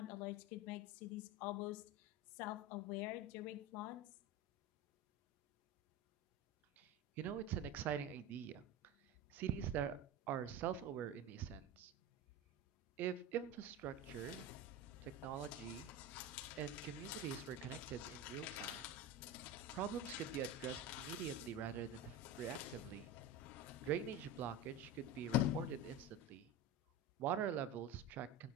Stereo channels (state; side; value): normal; both; correlation 0.25